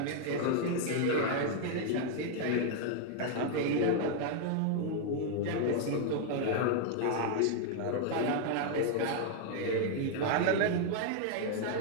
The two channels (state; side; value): different; both; correlation 0.00